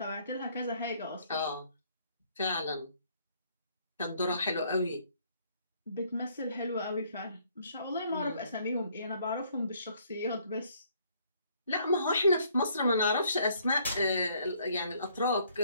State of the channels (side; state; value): both; inverted; correlation -0.65